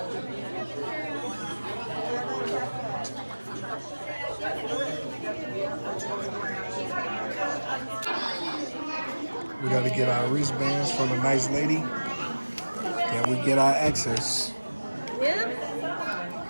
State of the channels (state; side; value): inverted; both; correlation -1.00